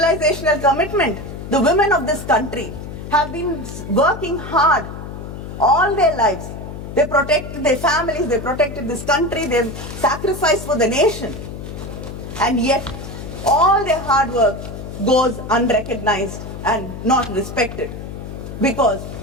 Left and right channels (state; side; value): noise; left; hum, 10 dB below the sound